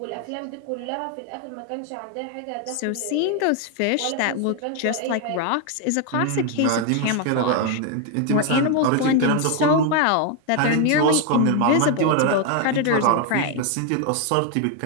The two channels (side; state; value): both; different; correlation 0.01